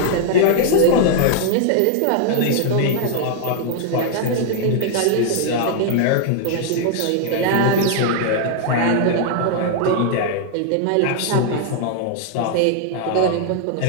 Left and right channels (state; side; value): different; both; correlation 0.00